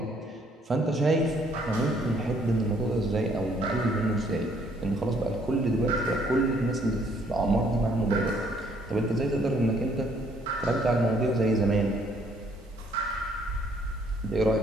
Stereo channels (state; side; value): normal; both; correlation 0.65